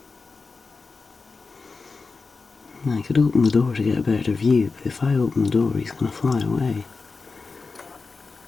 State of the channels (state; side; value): quieter; right; 4.2 dB